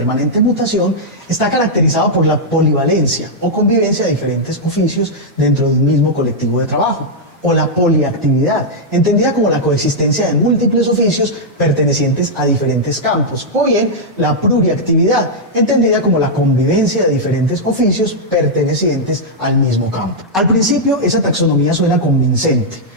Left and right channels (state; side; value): normal; both; correlation -0.06